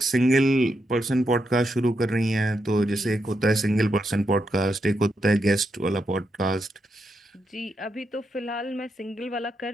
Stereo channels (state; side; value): normal; both; correlation 0.83